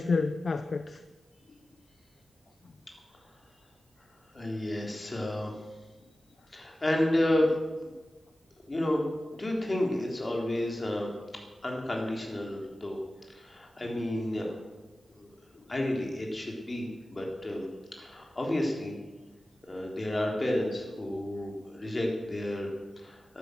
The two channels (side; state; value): both; normal; correlation 0.95